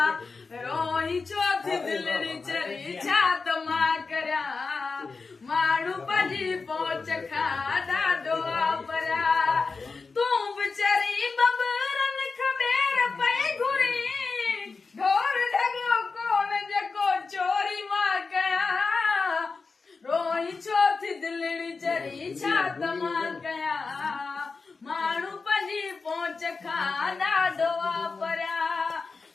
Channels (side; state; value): right; quieter; 4.4 dB